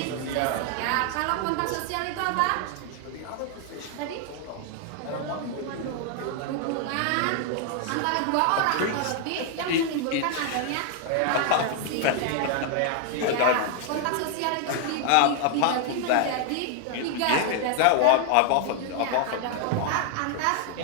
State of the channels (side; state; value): both; different; correlation 0.00